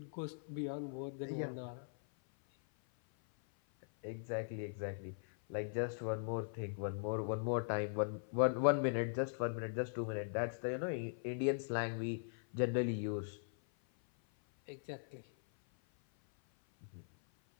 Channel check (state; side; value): silent; right; 51 dB below the other